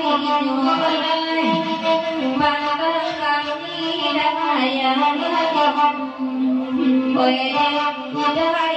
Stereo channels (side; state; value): both; identical; correlation 1.00